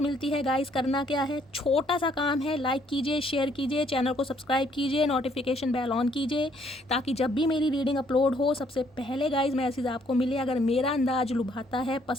मिलती है गाइस, करना क्या है, छोटा सा काम है, लाइक कीजिए, शेयर कीजिए, चैनल को सब्सक्राइब कीजिए, नोटिफिकेशन बेल ऑन कीजिए, ताकि जब भी मेरी रीडिंग अपलोड हो सबसे पहले गाइस मैसेज आपको मिले। अगर मेरा अंदाज लुभाता है,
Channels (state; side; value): normal; both; correlation 0.66